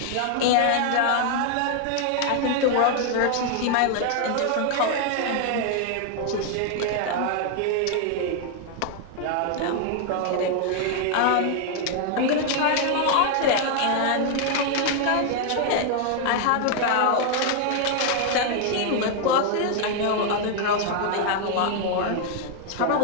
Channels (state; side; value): different; both; correlation 0.00